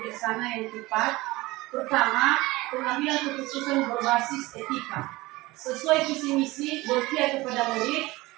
yang tepat, pertama, pengambilan keputusan berbasis etika sesuai visi misi berpihak kepada murid,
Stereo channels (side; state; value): left; quieter; 20.6 dB